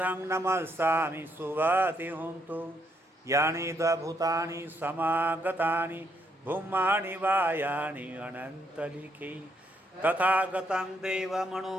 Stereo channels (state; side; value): normal; both; correlation 0.74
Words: नमस्सामि सुवति हुन्तु यानि च भूतानि समागतानि भूमानि वायानि अनन्तलिखि तथागतं